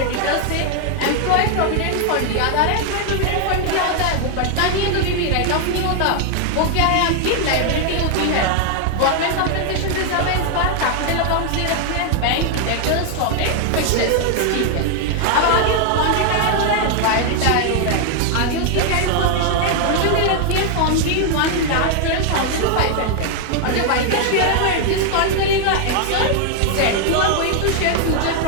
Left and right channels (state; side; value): different; both; correlation 0.00